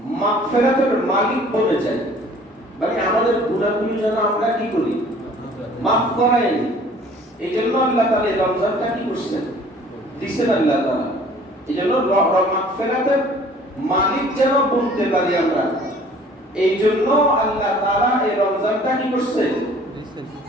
মাগফিরাতের মালিক বনে যাই, মানে আমাদের গুনাহগুলো যেন আমরা কি করি, মাফ করাই। এই জন্য আল্লাহ তাআলা এই রমজানটা কি করছেন, দিচ্ছেন আল্লাহ তাআলা। এই জন্য মাগফিরাতের মালিক যেন বলতে পারি আমরা, এই জন্য আল্লাহ তাআলা এই রমজানটা কি করছেন,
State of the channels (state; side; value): normal; both; correlation 0.52